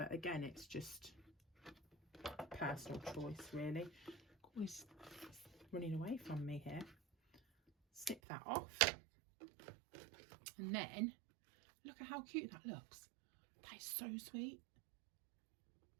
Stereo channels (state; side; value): drops out; left; at 8.2 s